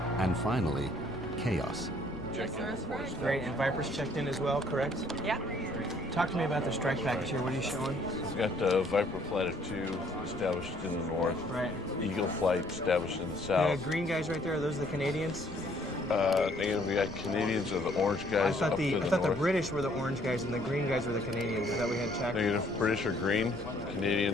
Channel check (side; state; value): left; noise; rumble, 15 dB below the sound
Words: and finally, chaos. Great, and Viper's checked in as well, correct? Yeah. Talk to me about the strike package here. What are you showing? We've got Viper Flight of 2 established in the north. Right. Eagle Flight established in the south. The green guys right there, are those the Canadians? Again, we got Canadians or the orange guys I up to the thought the north. British were the orange guys and the green guys were the Canadians. Is that we had checked? Negative. British are green,